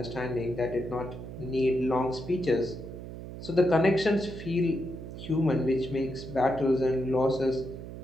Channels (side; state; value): right; noise; hum, 11 dB below the sound